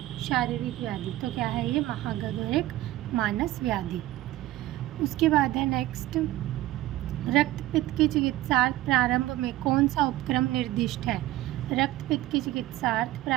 शारीरिक व्याधि। तो क्या है ये, महागध और एक मानस व्याधि। उसके बाद है नेक्स्ट, रक्तपित्त की चिकित्सार्थ प्रारंभ में कौन सा उपक्रम निर्दिष्ट है। रक्तपित्त की चिकित्सार्थ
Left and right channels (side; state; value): left; quieter; 15.7 dB